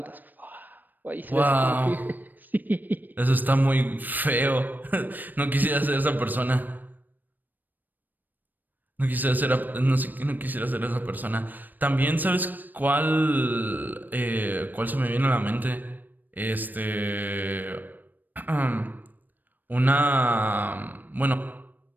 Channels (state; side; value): late; left; 0.089 ms